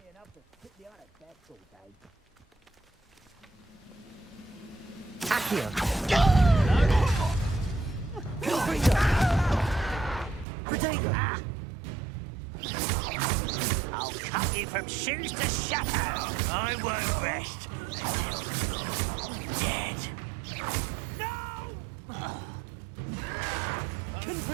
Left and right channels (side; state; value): left; drops out; at 10.5 s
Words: enough to sit behind a desk all day. Accio. Protego. I'll cut you from shoes to shadow. I won't rest until you're dead. No! I will